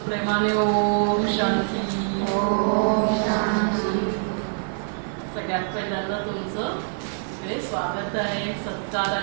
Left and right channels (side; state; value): left; silent; 62 dB below the other